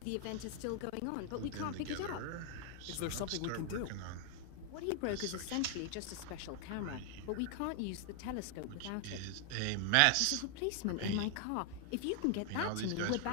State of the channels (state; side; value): different; both; correlation 0.00